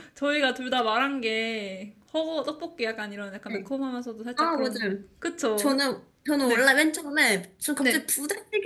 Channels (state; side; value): identical; both; correlation 1.00